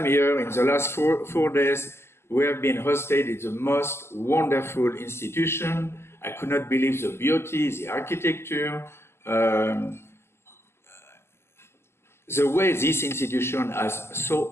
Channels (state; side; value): late; right; 0.12 ms